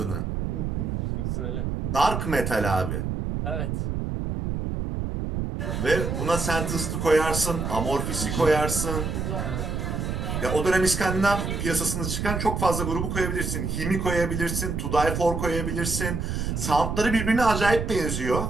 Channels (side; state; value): right; noise; rumble, 2 dB below the sound